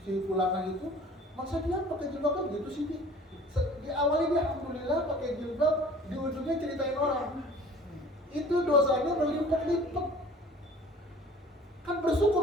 Fulana itu, masa dia pakai jilbab kan gitu sih Bi. Di awalnya dia alhamdulillah pakai jilbab, di ujungnya ceritain orang. Itu dosanya berlipat-lipat. Kan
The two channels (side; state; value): both; normal; correlation 0.48